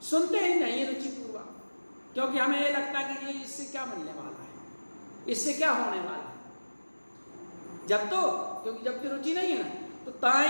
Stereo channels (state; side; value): inverted; both; correlation -1.00